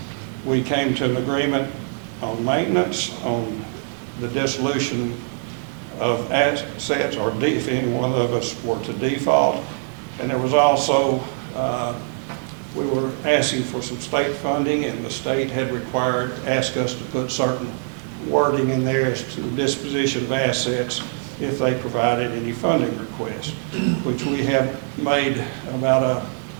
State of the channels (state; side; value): silent; left; 61 dB below the other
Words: We came to an agreement on maintenance, on the dissolution of assets, or if any one of us were to default. And there was also, we were asking for some state funding, and the state had asked us to put certain wording in there as to the disposition of assets if they provided any funding requests, which we have made about a